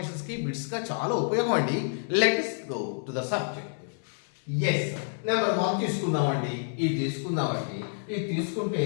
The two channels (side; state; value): right; silent; 59 dB below the other